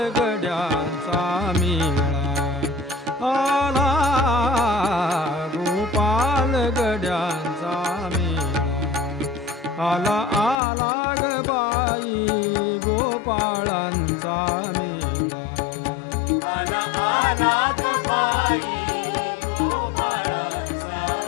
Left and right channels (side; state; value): right; drops out; at 10.6 s